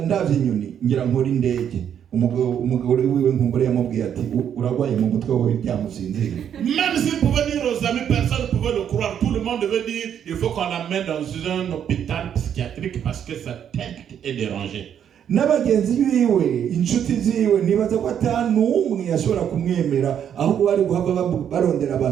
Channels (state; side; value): quieter; left; 9.0 dB